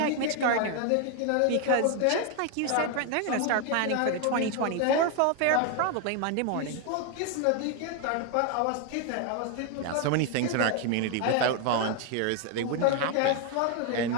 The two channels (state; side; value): different; both; correlation 0.01